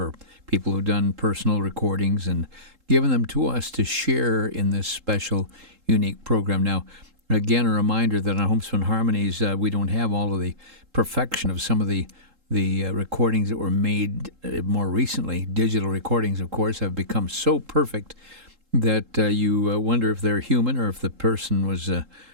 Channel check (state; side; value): late; left; 3.7 ms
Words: people who've done personal recordings and given them to us to share in this special, unique program. Now, again, a reminder that on Homespun Harmonies, we don't have all of the perfection of some of the recordings that were made more recently. Digital recordings, of course, have become so perfect that you wonder if they're human or if the person was